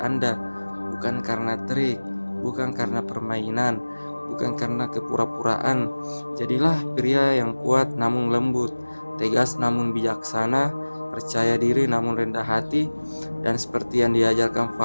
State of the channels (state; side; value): inverted; both; correlation -1.00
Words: bukan karena trik, bukan karena permainan, bukan karena kepura-puraan. Jadilah pria yang kuat namun lembut, tegas namun bijaksana, percaya diri namun rendah hati, dan seperti yang diajarkan